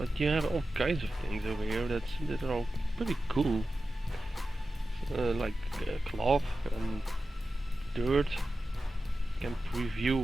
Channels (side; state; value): both; normal; correlation 0.93